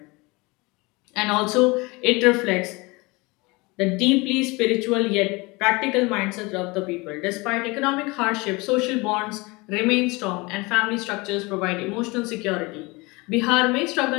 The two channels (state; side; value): quieter; right; 25.0 dB